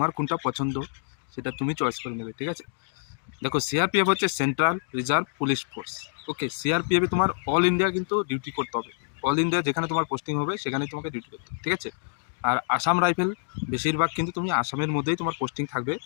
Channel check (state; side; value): silent; right; digital silence